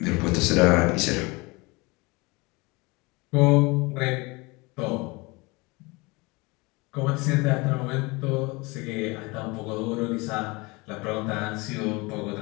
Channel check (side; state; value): right; quieter; 25.5 dB